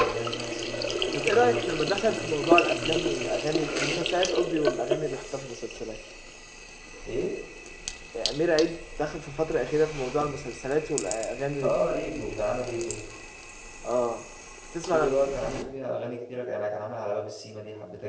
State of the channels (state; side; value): identical; both; correlation 1.00